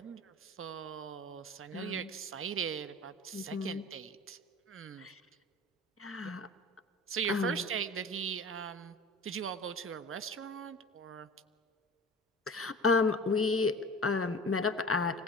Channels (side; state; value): both; normal; correlation 0.38